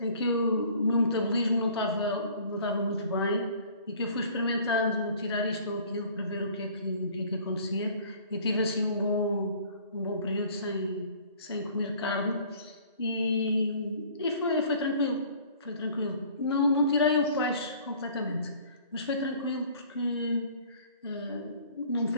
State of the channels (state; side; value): inverted; both; correlation -0.52